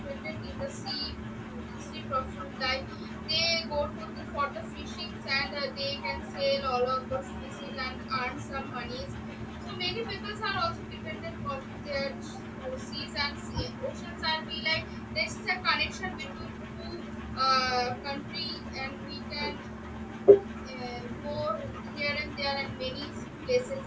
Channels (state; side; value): identical; both; correlation 1.00